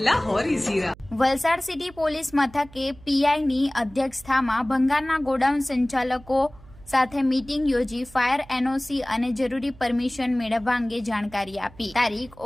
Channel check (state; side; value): noise; right; hum, 22 dB below the sound